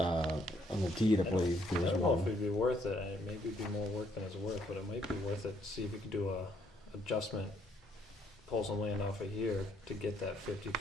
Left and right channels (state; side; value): normal; both; correlation 0.69